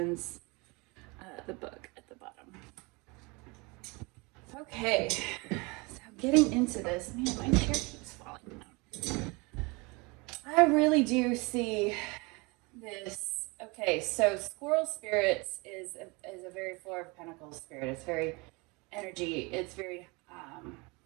the book at the bottom. Okay. So getting into this, man, my chair keeps falling down. I really do see this. Okay, so Squirrel Spirits is a very Four of Pentacles spirit. It's very energy. It's very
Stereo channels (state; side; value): quieter; left; 27.2 dB